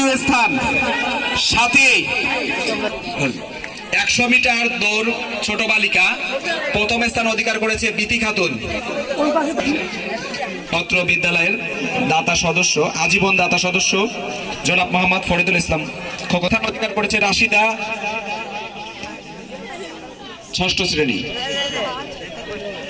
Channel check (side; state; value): both; identical; correlation 1.00